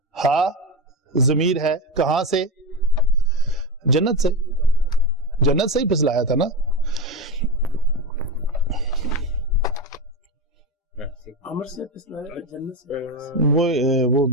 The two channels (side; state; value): both; normal; correlation 0.18